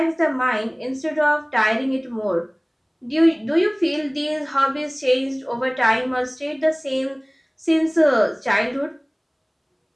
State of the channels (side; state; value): both; identical; correlation 1.00